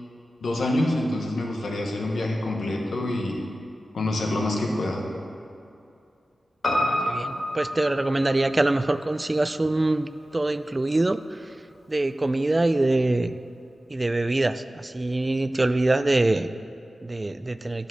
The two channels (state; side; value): normal; both; correlation 0.95